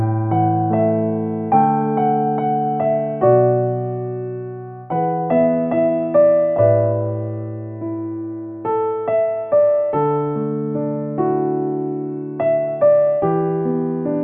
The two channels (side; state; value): both; identical; correlation 1.00